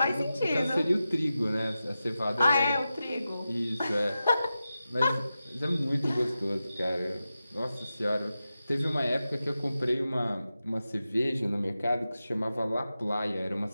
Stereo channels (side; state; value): both; inverted; correlation -0.92